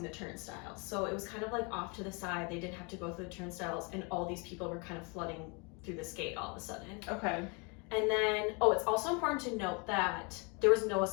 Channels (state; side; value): quieter; right; 32.1 dB